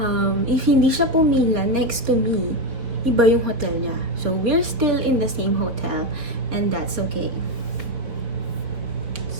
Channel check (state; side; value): late; left; 4.6 ms